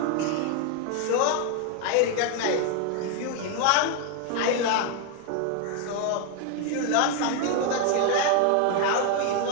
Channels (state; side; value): different; both; correlation 0.01